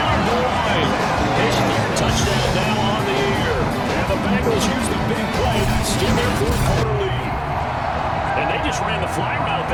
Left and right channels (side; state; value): both; identical; correlation 1.00